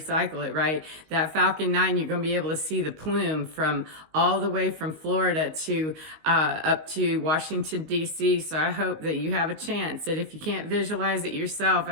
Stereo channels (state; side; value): late; left; 19 ms